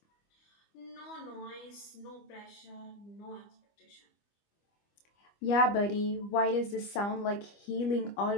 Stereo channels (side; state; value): right; late; 25 ms